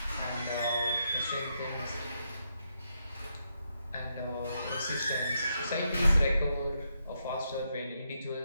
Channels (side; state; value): both; inverted; correlation -0.81